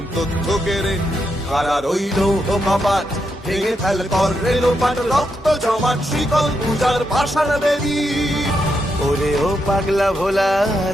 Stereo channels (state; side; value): normal; both; correlation 0.82